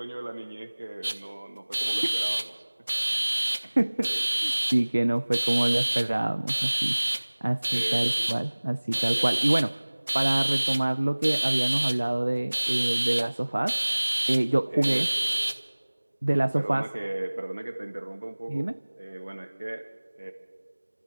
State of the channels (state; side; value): inverted; both; correlation -1.00